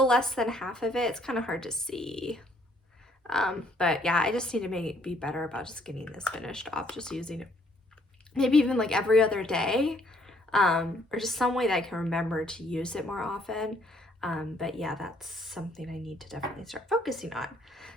less than half of it. It's kind of hard to see. But yeah, I just need to be better about just getting this finished off, just using it maybe even like every other day, or just some way that I can remember to use it more often. But yeah, that's something I need to definitely start focusing on.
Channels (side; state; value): both; normal; correlation 0.66